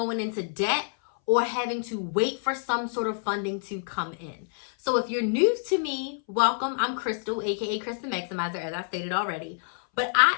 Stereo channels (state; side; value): silent; right; 60 dB below the other